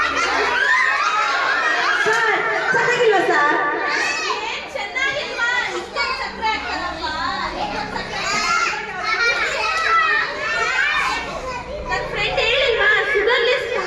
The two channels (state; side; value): identical; both; correlation 1.00